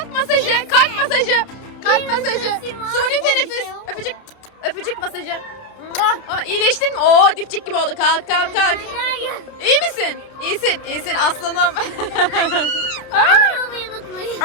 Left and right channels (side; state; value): right; late; 30 ms